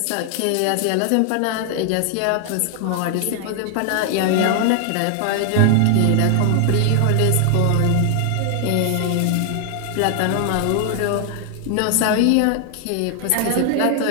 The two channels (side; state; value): both; different; correlation 0.00